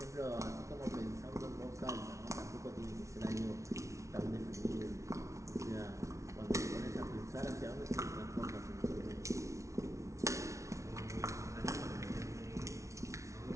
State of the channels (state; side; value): late; left; 0.14 ms